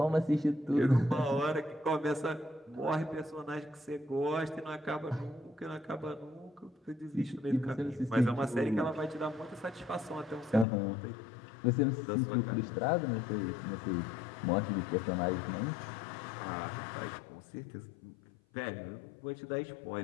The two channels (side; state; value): right; drops out; at 10.7 s